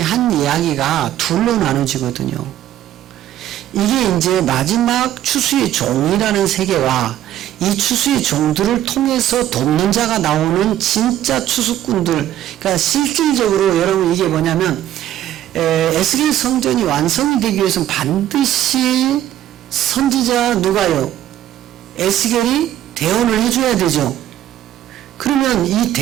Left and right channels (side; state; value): left; quieter; 12.3 dB